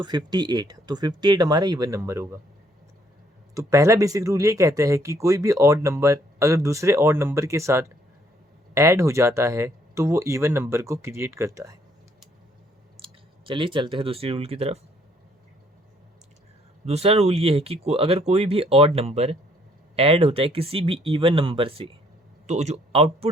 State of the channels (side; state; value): both; normal; correlation 0.66